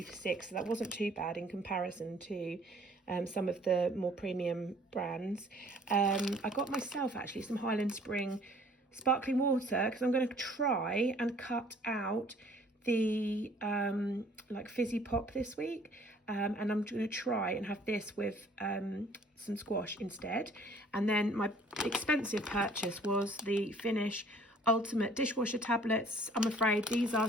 for 6, so that wasn't too bad in comparison to some of the more premium brands. I got myself actually some Highland Spring sparkling water because I'm going to try and cut out the like fizzy pop this week, and I'm going to try and have this with some squash instead. And then my expensive purchase was the Finish Ultimate Dishwasher tablets. I'm afraid these are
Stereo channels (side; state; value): both; normal; correlation 0.56